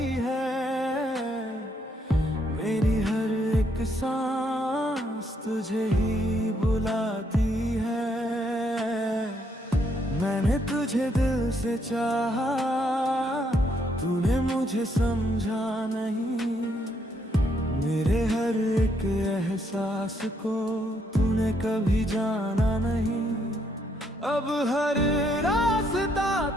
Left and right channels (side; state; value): both; normal; correlation 0.73